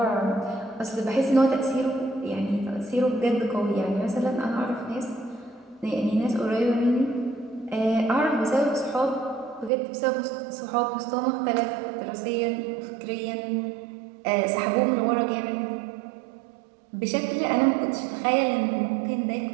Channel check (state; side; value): drops out; left; at 9.7 s